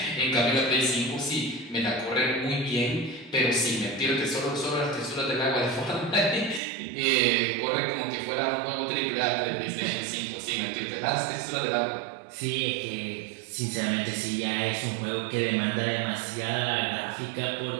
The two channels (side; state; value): left; drops out; at 6.6 s